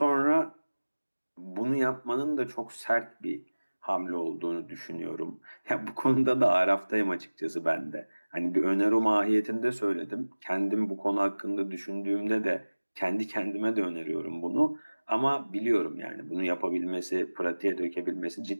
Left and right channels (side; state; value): both; inverted; correlation -1.00